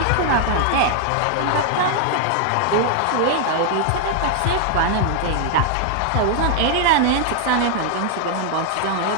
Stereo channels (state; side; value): different; both; correlation 0.00